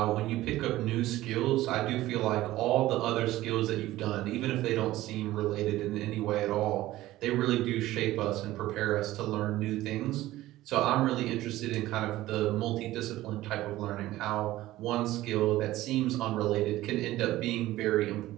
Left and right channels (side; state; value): left; quieter; 16.0 dB